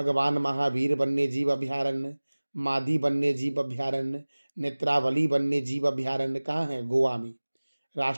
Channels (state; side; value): inverted; both; correlation -1.00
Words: महावीर वन्य जीव अभयारण्य, मादी वन्य जीव अभयारण्य, नेत्रावली वन्य जीव अभयारण्य कहाँ है? गोवा में।